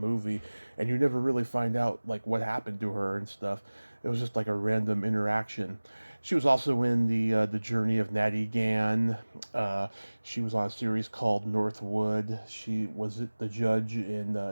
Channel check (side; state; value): both; inverted; correlation -1.00